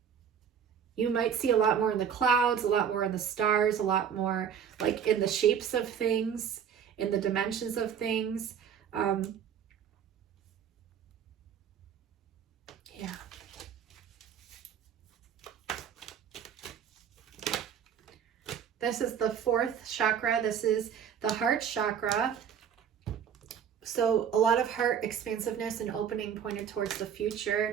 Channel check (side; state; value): left; quieter; 8.0 dB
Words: You might see a lot more in the clouds, a lot more in the stars, a lot more like in the shapes of things, in the dimensions of things. Yeah. This is the 4th chakra. This is the heart chakra. So a lot of heart expansiveness and opening pointed towards the